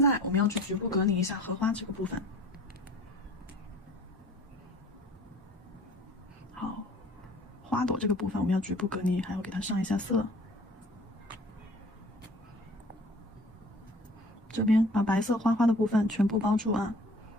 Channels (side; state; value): both; normal; correlation 0.48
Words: 我们要去局部隔离一下荷花这个部分。好，花朵这个部分我们要局部隔离，还要给它上一下色。这边把白色花花的部分全部包住啊。